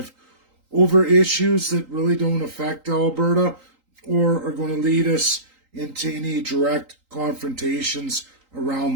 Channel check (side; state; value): left; late; 3.8 ms